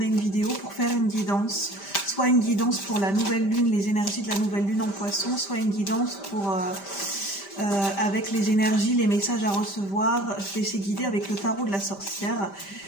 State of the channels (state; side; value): late; right; 5.1 ms